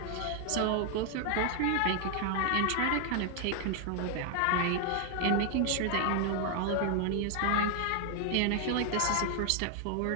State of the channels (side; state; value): both; different; correlation 0.00